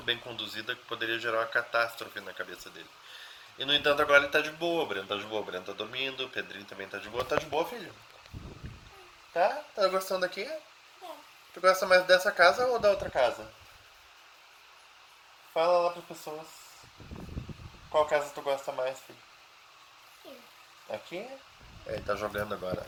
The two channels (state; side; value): identical; both; correlation 1.00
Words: bem conduzida, poderia gerar uma catástrofe na cabeça dele. E no entanto agora ele tá de boa, o Breno tá de boa, o Breno tá dormindo, o Pedrinho também tá de boa. Tá de boa, filho? Tá? Tá gostando daqui? Tu gosta mais dessa casa ou da outra casa? Fala lá pras pessoas. Qual casa tu gosta mais, filho? Aqui? Ele tá jogando agora.